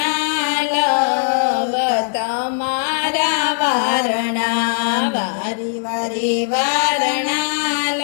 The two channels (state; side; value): silent; right; digital silence